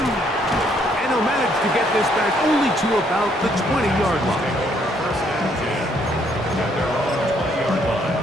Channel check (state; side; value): normal; both; correlation 0.69